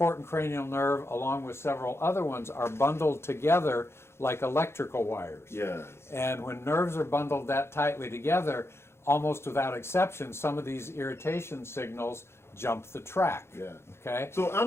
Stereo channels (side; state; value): right; late; 0.12 ms